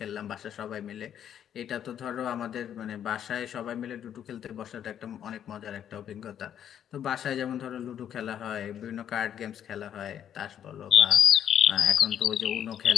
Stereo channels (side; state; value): right; quieter; 9.7 dB